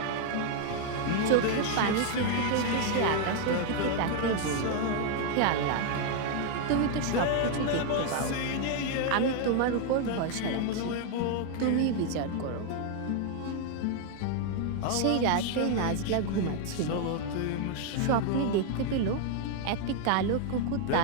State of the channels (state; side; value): different; both; correlation 0.00